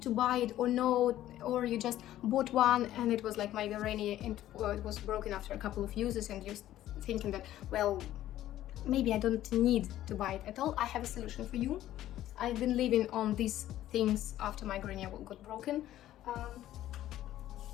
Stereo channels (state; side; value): quieter; right; 13.4 dB